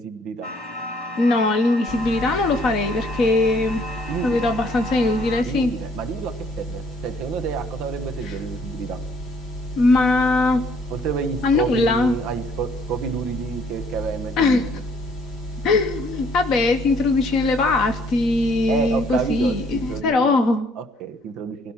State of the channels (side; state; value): both; normal; correlation 0.63